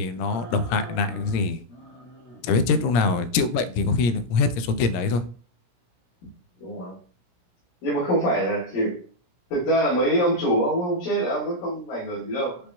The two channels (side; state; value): right; late; 17 ms